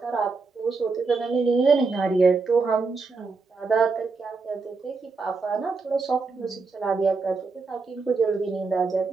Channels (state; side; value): quieter; left; 4.3 dB